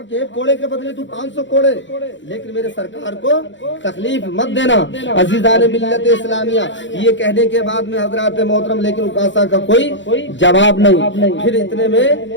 کہ ایک کوڑے کے بدلے تو 500 کوڑے، لیکن میرے سرکار کو تکلیف مت دینا۔ عزیزان ملت اسلامیہ یہ کہنے کے بعد میں حضرات محترم لیکن اکاسا کا کوئی جواب نہیں۔ پھر اتنے میں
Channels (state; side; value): late; right; 0.54 ms